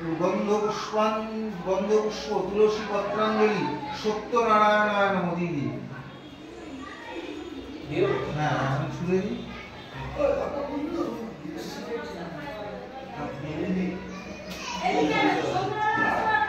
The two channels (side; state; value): both; identical; correlation 1.00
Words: গন্ধপুষ্প তুলসী পত্রাঞ্জলি সত্যনারায়ণায় নমঃ। দিদি হ্যাঁ আমি ছুঁড়ে দিই।